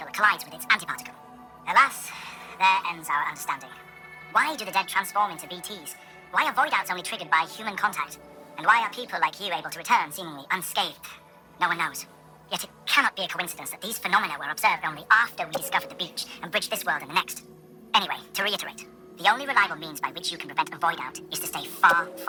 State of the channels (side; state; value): both; identical; correlation 1.00